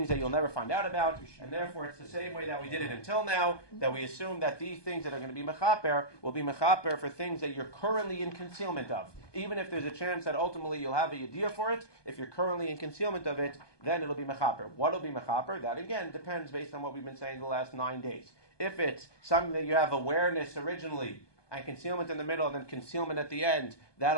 that you'll never find out about, and therefore it's the same way that we did it until now, that we assume that these things that are going to be mechaper will be mechaper for things that you're currently in concealment of. Even if there's a chance that ultimately you'll have a yediyah for it, if you're currently in concealment of it, then it'll be mechaper. What will be mechaper? That again depends based on what we've been saying the last 9 days. If it's something that you have awareness originally, and concealment in the middle, and then concealment at the end,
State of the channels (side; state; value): right; late; 1.2 ms